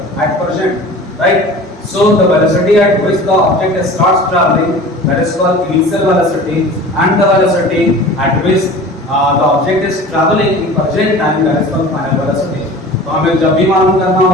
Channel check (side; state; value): both; normal; correlation 0.40